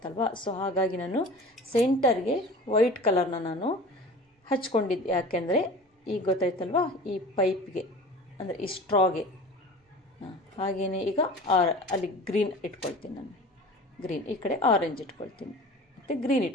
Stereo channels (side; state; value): both; normal; correlation 0.39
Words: ಸೊ ಹಾಗಾಗಿ ನಾನು ಸೆಂಟರ್ಗೆ ವೈಟ್ ಕಲರ್ನ ನಾನು ಹಚ್ಕೊಂಡಿದ್ದೆ. ಯಾಕೆಂದರೆ ಈಗ ಗೊತ್ತಾಯ್ತಲ್ವ, ಈ ಪೈಪ್ಗೆ ಅಂದರೆ ಈ ಸ್ಟ್ರಾಗೆ. ಹಾಗೆಯೇ ಈಗ ಅಲ್ಲಿ ಗ್ರೀನ್ ಇಟ್ಕೊಳ್ತೀನಿ ನಾನು, ಗ್ರೀನ್ ಈ ಕಡೆ ಆರೆಂಜ್ ಇಟ್ಕೊಳ್ತೀನಿ, ಮತ್ತು ಗ್ರೀನ್